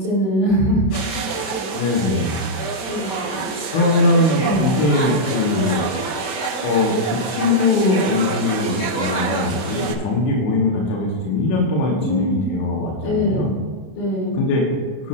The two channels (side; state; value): right; late; 32 ms